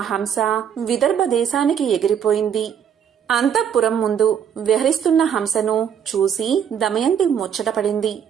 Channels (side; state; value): left; quieter; 8.3 dB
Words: హంస విదర్భ దేశానికి ఎగిరిపోయింది. అంతఃపురం ముందు విహరిస్తున్న హంసను చూసి దమయంతి ముచ్చటపడింది.